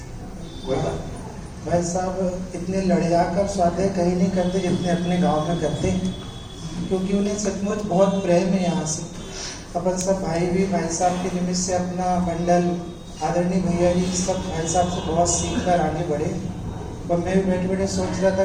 कोई बात। भाई साहब इतने लड़िया कर स्वाध्याय कहीं नहीं करते जितने अपने गांव में करते हैं, क्योंकि उन्हें सचमुच बहुत प्रेम है यहाँ से। अपन सब भाई भी भाई साहब के निमित्त से अपना मंडल, आदरणीय भैया जी सब भाई साहब से बहुत सीख कर आगे बढ़े। और मैं भी बैठे बैठे सोच रहा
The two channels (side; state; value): both; identical; correlation 1.00